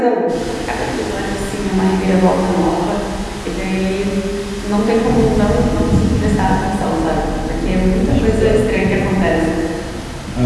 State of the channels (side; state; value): both; identical; correlation 1.00